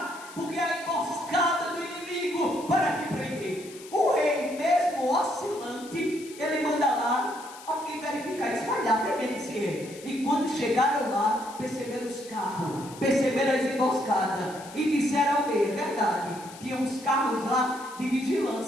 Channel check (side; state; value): left; noise; hiss, 18 dB below the sound